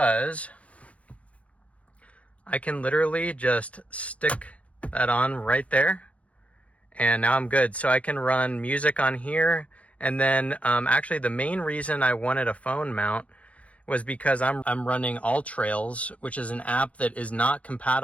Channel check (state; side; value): late; right; 0.065 ms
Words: I can literally just stick that on right there, and now I'm good. So I can run music on here. And then actually the main reason I wanted a phone mount was because I'm running AllTrails, which is an app that is not